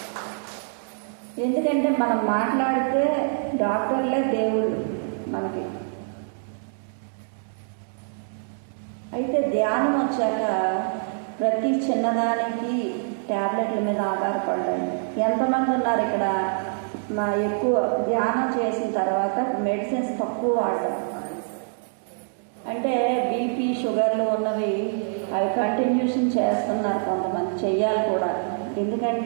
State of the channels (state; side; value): silent; left; 62 dB below the other